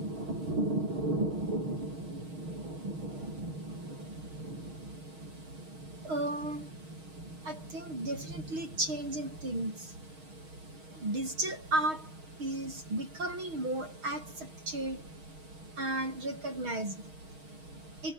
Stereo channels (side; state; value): left; late; 6.4 ms